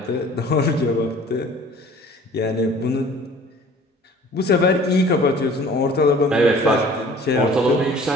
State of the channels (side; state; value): both; normal; correlation 0.49